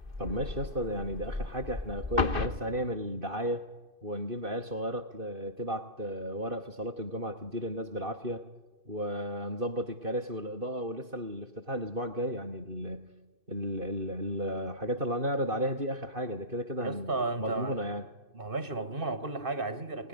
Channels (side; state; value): left; late; 2.6 ms